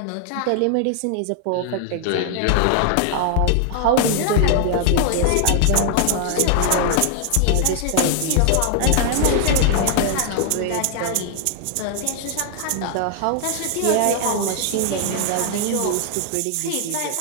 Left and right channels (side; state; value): both; different; correlation 0.00